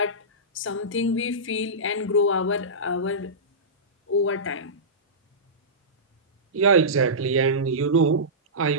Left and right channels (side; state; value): both; normal; correlation -0.18